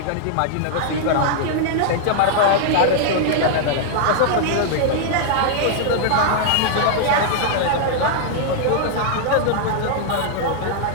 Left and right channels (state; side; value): different; both; correlation -0.01